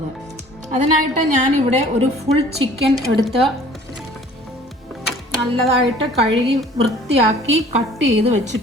അതിനായിട്ട് ഞാനിവിടെ ഒരു ഫുൾ ചിക്കൻ എടുത്ത് നല്ലതായിട്ട് കഴുകി വൃത്തിയാക്കി കട്ട് ചെയ്ത്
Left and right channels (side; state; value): both; normal; correlation 0.50